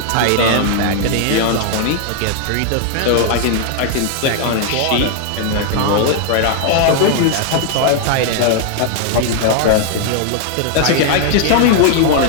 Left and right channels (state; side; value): different; both; correlation 0.00